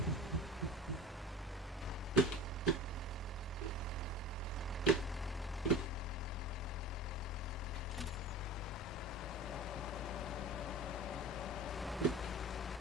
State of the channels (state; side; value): normal; both; correlation 0.34